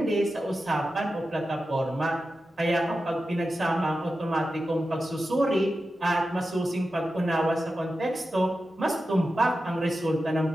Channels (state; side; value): normal; both; correlation 0.91